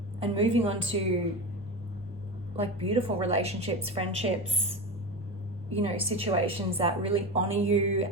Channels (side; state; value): both; normal; correlation 0.23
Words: moving on to like beautiful relationships, friendships, you know, situations that really honor you